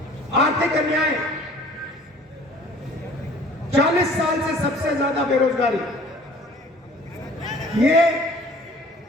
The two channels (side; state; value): both; normal; correlation 0.51